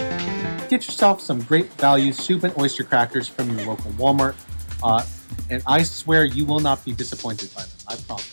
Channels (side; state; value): both; inverted; correlation -1.00